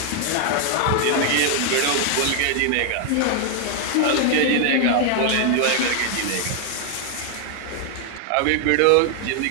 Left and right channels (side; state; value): both; different; correlation 0.00